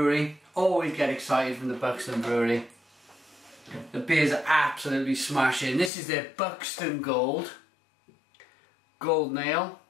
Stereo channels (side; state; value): right; drops out; at 5.9 s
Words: Always get excited from the Buxton Brewery. The beers are absolutely smashing. This is their Buxton Gold Ale.